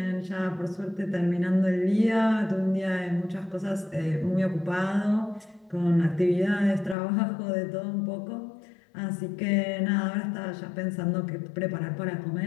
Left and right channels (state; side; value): drops out; right; at 7.0 s